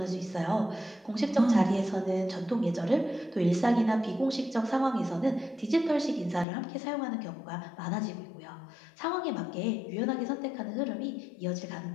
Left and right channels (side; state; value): right; drops out; at 6.5 s